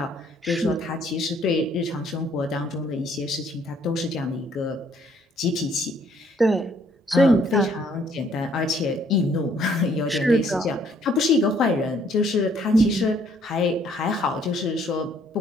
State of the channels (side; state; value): both; normal; correlation 0.65